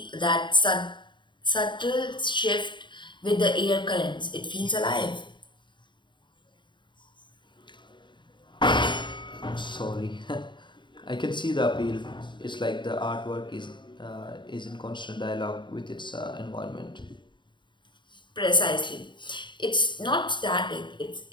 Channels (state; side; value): late; right; 0.23 ms